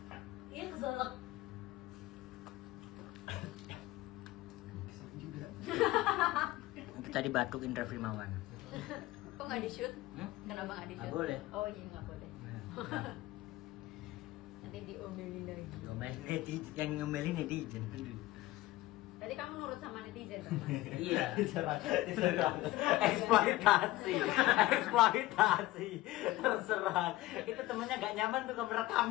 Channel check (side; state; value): right; quieter; 17.5 dB